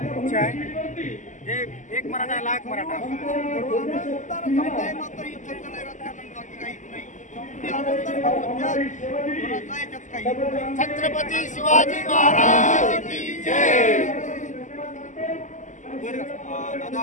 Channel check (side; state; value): right; late; 0.36 ms